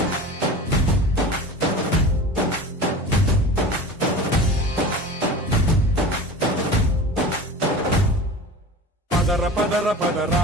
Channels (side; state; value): both; normal; correlation 0.34